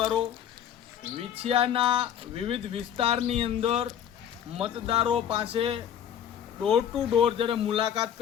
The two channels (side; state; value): right; quieter; 9.5 dB